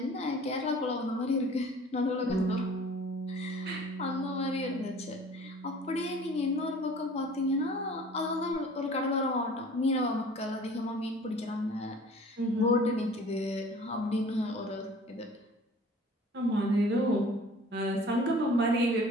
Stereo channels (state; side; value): normal; both; correlation 0.47